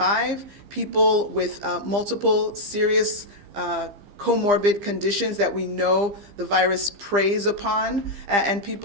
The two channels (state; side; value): late; left; 15 ms